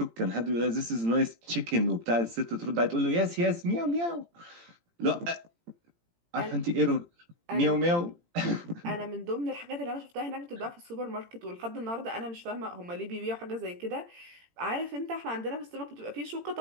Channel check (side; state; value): left; late; 18 ms